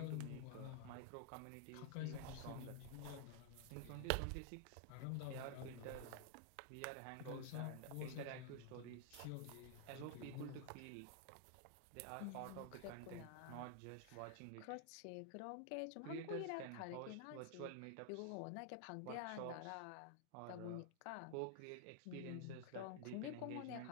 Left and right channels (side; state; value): both; different; correlation 0.00